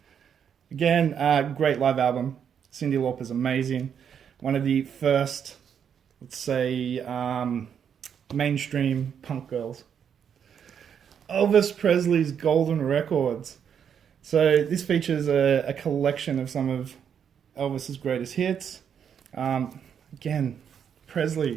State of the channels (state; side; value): quieter; left; 8.0 dB